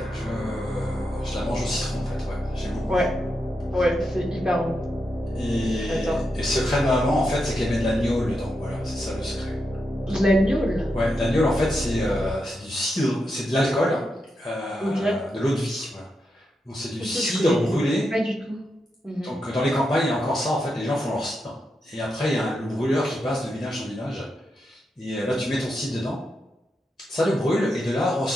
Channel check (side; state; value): both; normal; correlation 0.85